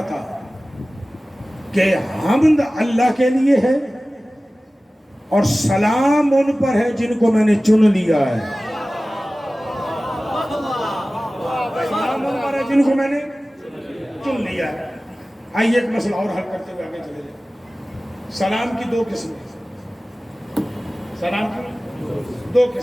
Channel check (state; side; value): normal; both; correlation 0.97